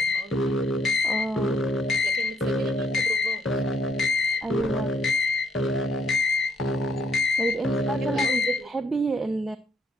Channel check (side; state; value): both; normal; correlation 0.69